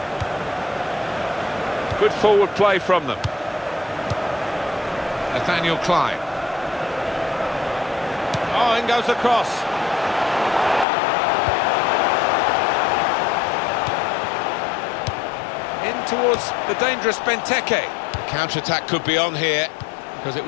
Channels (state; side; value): drops out; right; at 10.9 s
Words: Good forward play from them. Nathaniel Klein. Oh, in goes the cross. In towards the dangerous Benteke. The counter-attack could be on here, because it